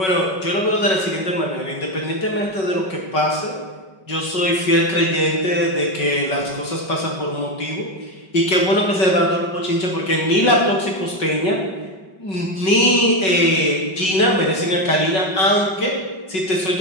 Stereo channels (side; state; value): right; late; 5.3 ms